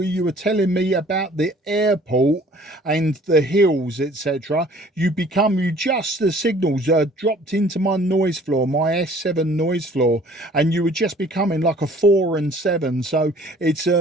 you were telling me about the airport and the hills, etc., the signals dropped into my noise floor, my S7 noise floor, and you were just becoming like a 4 and 7. So it's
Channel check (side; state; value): both; normal; correlation 0.54